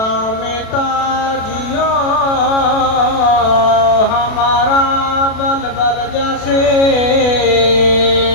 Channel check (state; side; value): late; right; 36 ms